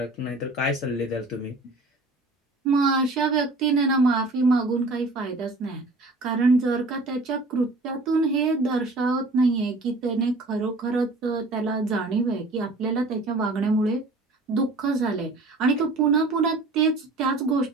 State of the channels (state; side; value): quieter; left; 3.0 dB